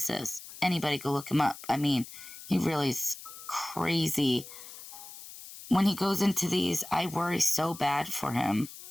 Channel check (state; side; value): noise; left; hiss, 15 dB below the sound